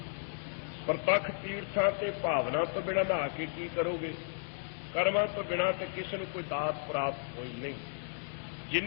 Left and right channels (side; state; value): right; silent; digital silence